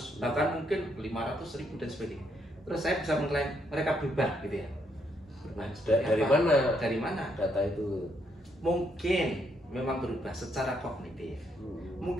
bahkan mungkin 500 ribu dan sebagainya. Terus saya bisa mengklaim mereka berubah gitu ya. Dari mana data itu? Mungkin memang berubah secara kognitif,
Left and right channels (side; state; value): both; normal; correlation 0.74